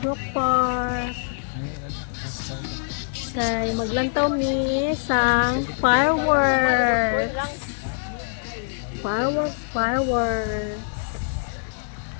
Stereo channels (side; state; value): right; silent; digital silence